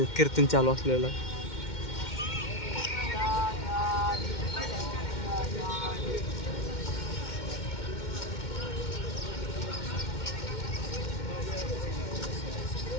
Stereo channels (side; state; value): right; late; 2.1 ms